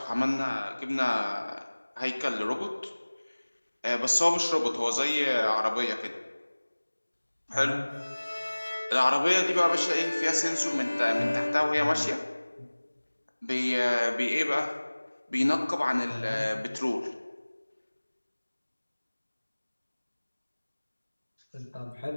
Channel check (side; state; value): both; inverted; correlation -1.00